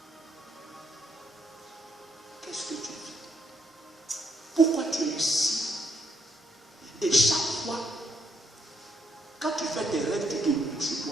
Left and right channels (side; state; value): both; normal; correlation 0.74